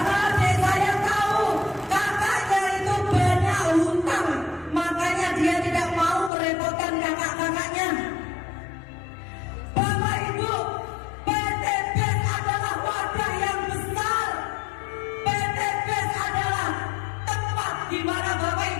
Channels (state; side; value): drops out; right; at 6.3 s